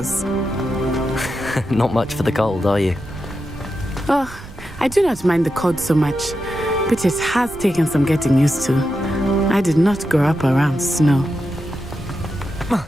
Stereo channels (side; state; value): right; noise; rumble, 16 dB below the sound